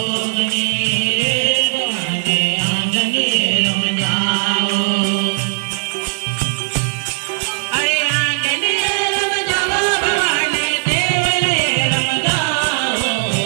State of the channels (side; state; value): left; silent; 68 dB below the other